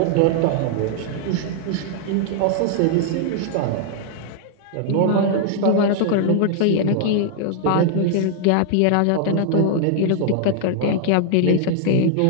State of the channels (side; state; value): both; different; correlation -0.01